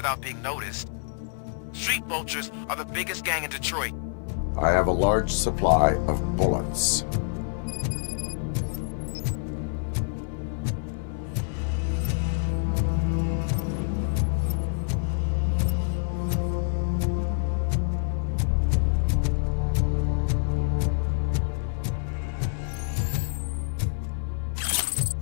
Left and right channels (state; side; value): silent; right; digital silence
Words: being noticed. Street vultures are the biggest gang in Detroit. I have a large supply of bullets.